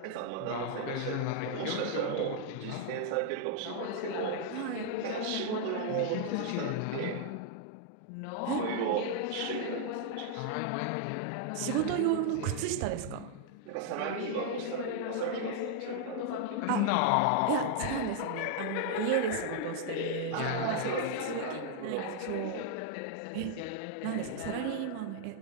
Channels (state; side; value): different; both; correlation -0.01